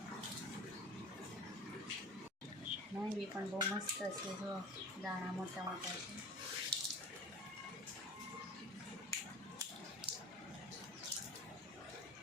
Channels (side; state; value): both; normal; correlation 0.38